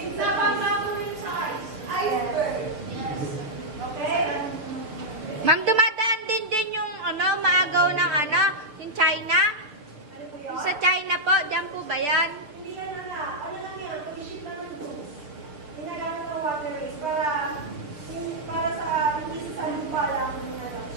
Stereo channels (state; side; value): late; left; 6.8 ms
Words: Sa pagkakawin sa Iceberg. Okay? Ma'am, dumadaan din yung maagaw ng yung China? Ano po yun? Sa China po, dyan po ba yan? Hindi ka na nga. Ano lang yan? Pag-ship naman goods. Ginagamit ng waterways para sa hindi sa lupa lang